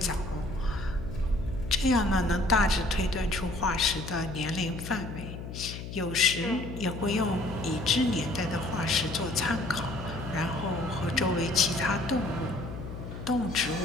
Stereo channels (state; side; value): noise; left; hum, 9 dB below the sound